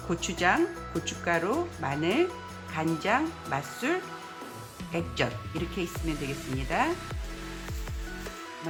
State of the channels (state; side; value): identical; both; correlation 1.00